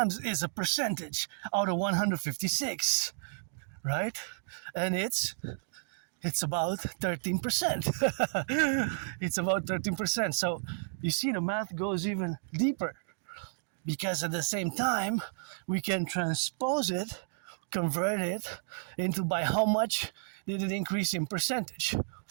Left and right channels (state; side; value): silent; left; digital silence